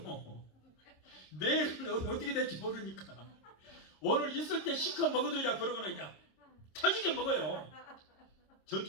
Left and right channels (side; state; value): right; late; 26 ms